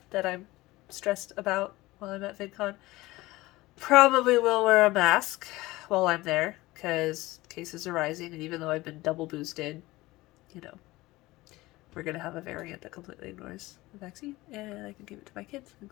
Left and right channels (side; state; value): right; quieter; 19.4 dB